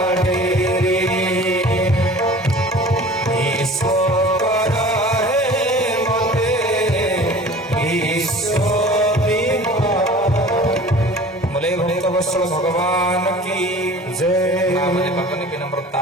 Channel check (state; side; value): normal; both; correlation 0.43